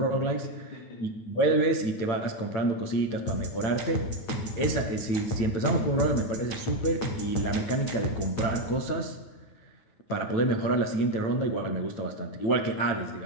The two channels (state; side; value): late; right; 9.0 ms